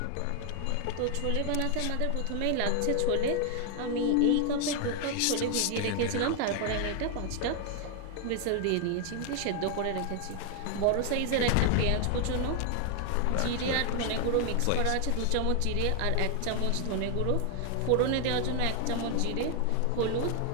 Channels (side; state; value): both; different; correlation 0.00